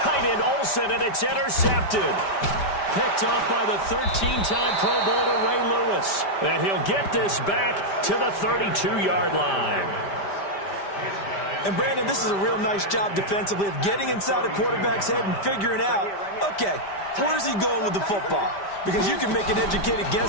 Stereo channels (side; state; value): right; late; 5.1 ms